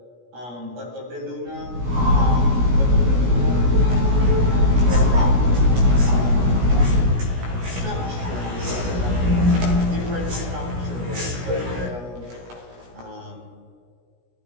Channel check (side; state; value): left; late; 17 ms